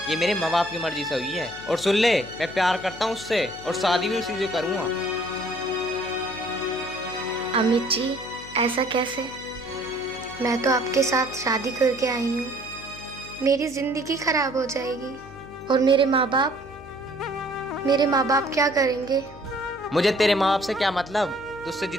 ये मेरे माँ बाप की मर्जी से हुई है। और सुन ले, मैं प्यार करता हूँ उससे और शादी भी उसी से करूँगा। अमित जी, ऐसा कैसे? मैं तो आपके साथ शादी करके आई हूँ। मेरी जिंदगी खराब हो जाएगी और मेरे माँ बाप क्या करेंगे? मुझे तेरे माँ बाप से क्या मतलब? तुझसे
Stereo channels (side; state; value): left; noise; hum, 18 dB below the sound